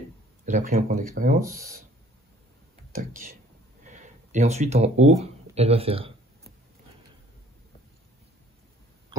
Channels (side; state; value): both; normal; correlation 0.56